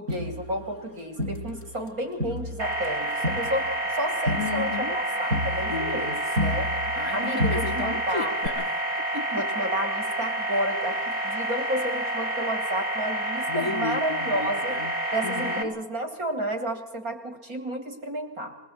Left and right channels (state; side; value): late; left; 4.3 ms